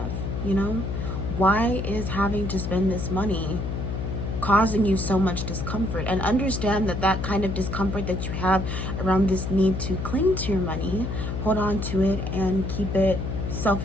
You know, why is having to spend this money causing you so much discomfort? And understand that that kind of discomfort that you have around this need to cling to your money, hold on to it and keep it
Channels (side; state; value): left; noise; hum, 3 dB below the sound